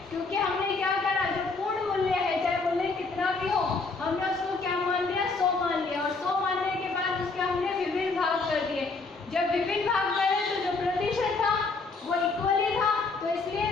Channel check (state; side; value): quieter; right; 4.0 dB